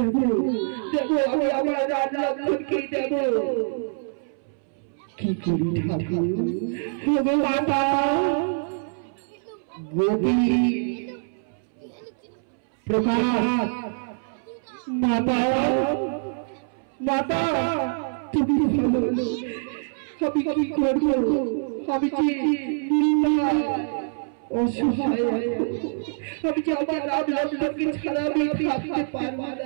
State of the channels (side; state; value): left; silent; 62 dB below the other